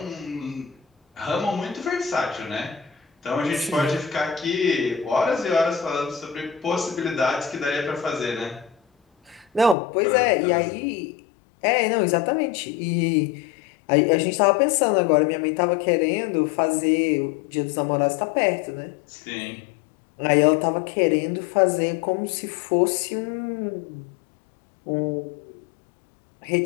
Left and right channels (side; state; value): right; drops out; at 9.8 s